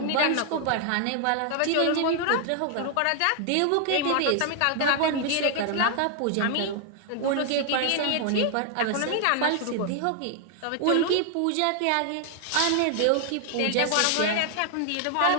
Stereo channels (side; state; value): both; different; correlation 0.00